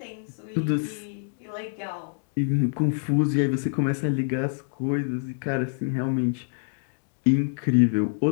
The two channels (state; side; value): silent; right; digital silence